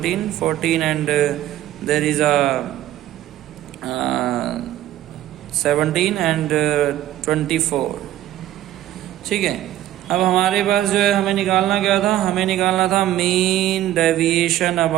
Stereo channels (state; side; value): quieter; left; 13.4 dB